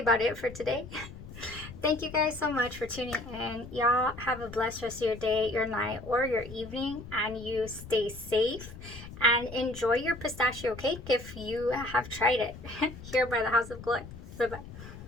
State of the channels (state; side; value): noise; left; rumble, 14 dB below the sound